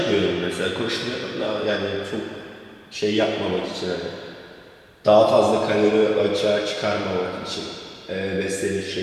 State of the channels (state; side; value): identical; both; correlation 1.00